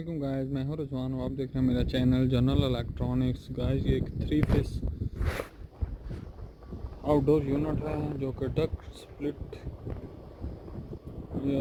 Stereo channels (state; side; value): identical; both; correlation 1.00